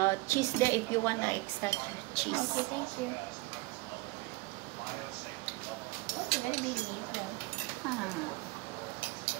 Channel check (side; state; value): left; quieter; 22.6 dB